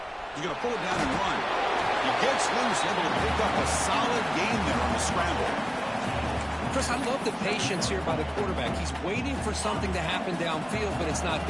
He's going to pull it down and run. He gets loose, able to pick up a solid gain there on the scramble. Chris, I love the patience here by the quarterback. He's waiting for something to happen downfield, but it's not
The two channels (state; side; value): identical; both; correlation 1.00